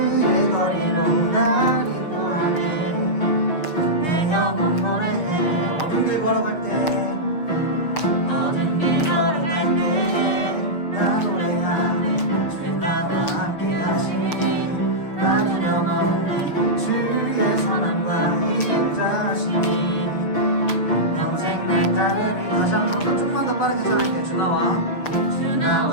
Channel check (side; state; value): right; late; 6.2 ms